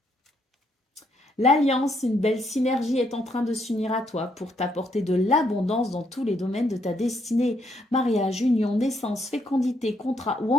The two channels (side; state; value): both; normal; correlation 0.73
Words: L'alliance, une belle synergie est en train de s'unir à toi pour t'apporter de l'abondance dans tous les domaines de ta destinée. Mariage, union, naissance, fécondité, contrat ou